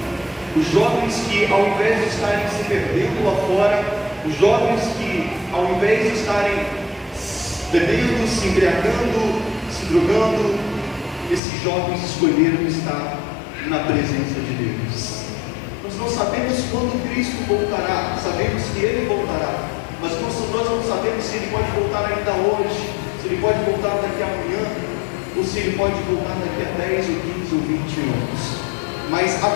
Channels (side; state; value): right; drops out; at 11.4 s